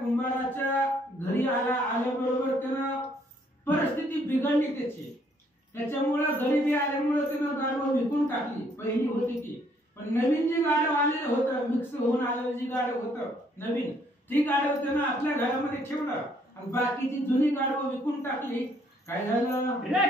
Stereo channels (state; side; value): normal; both; correlation 0.66